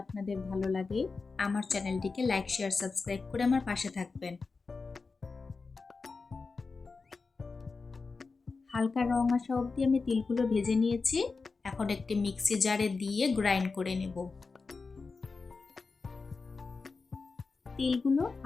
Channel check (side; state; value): right; quieter; 4.3 dB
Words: আপনাদের ভালো লাগে, আমার চ্যানেলটিকে লাইক, শেয়ার, সাবস্ক্রাইব করে আমার পাশে থাকবেন। হালকা রং আসা অবধি আমি তিলগুলো ভেজে নিয়েছি। এখন একটি মিক্সি জারে দিয়ে গ্রাইন্ড করে নেব। তিলগুলো